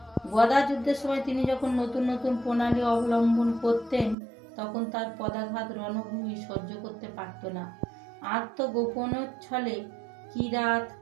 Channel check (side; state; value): left; drops out; at 4.2 s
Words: গদা যুদ্ধের সময় তিনি যখন নতুন নতুন প্রণালী অবলম্বন করতেন, তখন তার পদাঘাত রণভূমি সহ্য করতে পারত না। আত্মগোপনের ছলে কিরাত